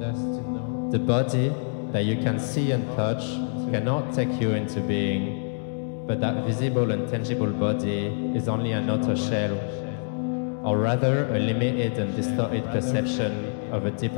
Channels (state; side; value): silent; right; digital silence